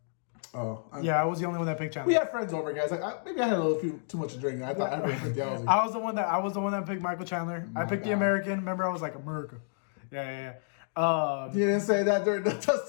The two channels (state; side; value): silent; right; digital silence